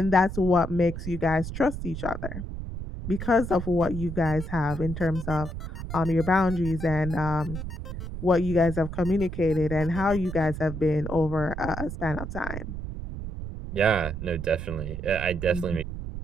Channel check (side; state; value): right; noise; rumble, 7 dB below the sound